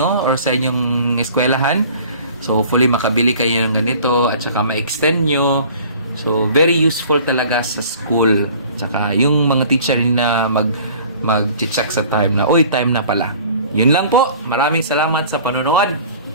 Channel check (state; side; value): inverted; both; correlation -0.48